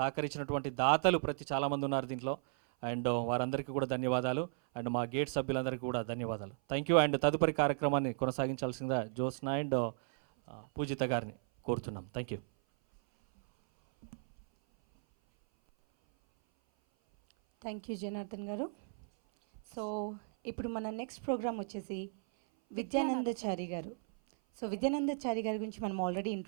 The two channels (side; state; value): left; silent; 54 dB below the other